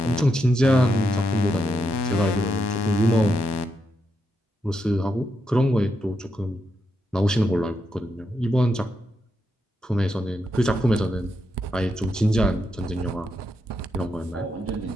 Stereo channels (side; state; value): both; normal; correlation 0.83